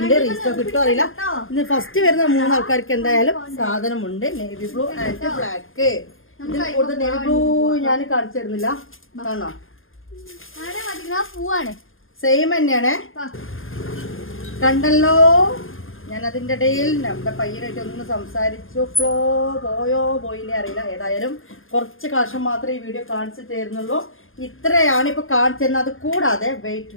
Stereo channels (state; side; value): late; right; 0.60 ms